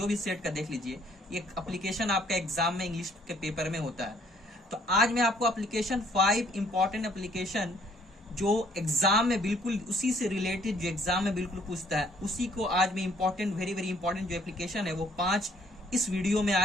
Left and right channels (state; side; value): normal; both; correlation 0.63